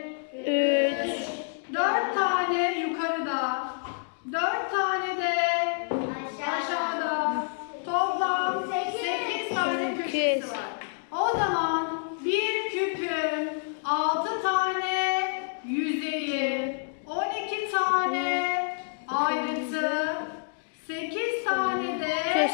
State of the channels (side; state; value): right; silent; digital silence